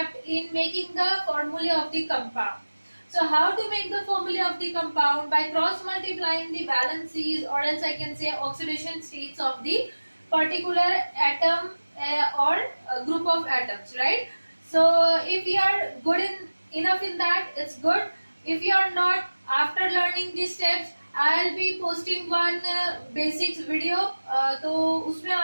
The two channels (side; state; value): both; inverted; correlation -1.00